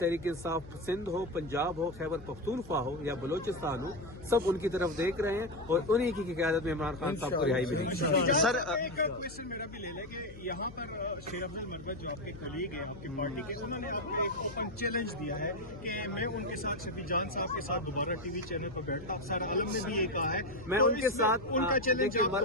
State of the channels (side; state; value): left; noise; hum, 17 dB below the sound